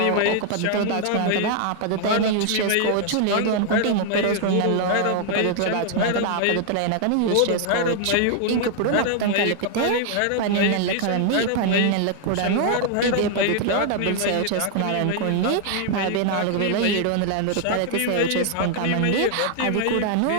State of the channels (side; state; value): both; different; correlation 0.00